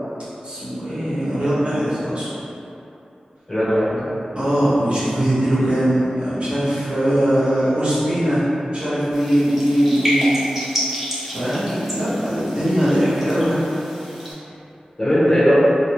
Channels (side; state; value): both; normal; correlation 0.93